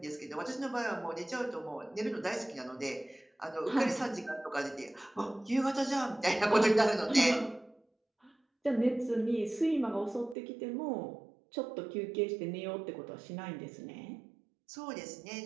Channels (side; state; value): left; drops out; at 10.4 s